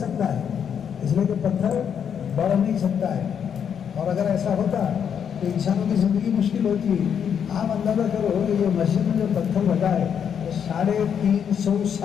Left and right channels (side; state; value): right; quieter; 7.9 dB